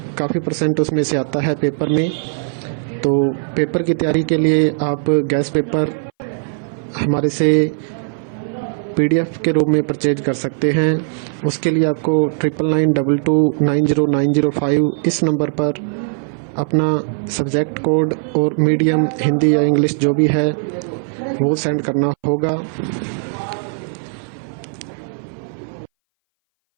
काफ़ी परसेंट उसमें से आता है पेपर में। तो पेपर की तैयारी के लिए आप गैस पेपर हमारे से PDF के रूप में परचेज कर सकते हैं। उसके लिए आपको 9992290905 इस नंबर पर अपना सब्जेक्ट कोड और मीडियम हिंदी या इंग्लिश जो भी है वो सेंड करना होगा।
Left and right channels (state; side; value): silent; left; 61 dB below the other